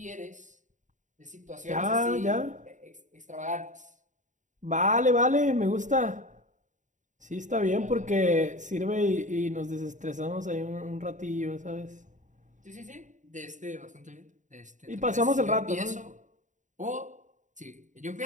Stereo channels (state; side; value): late; left; 0.36 ms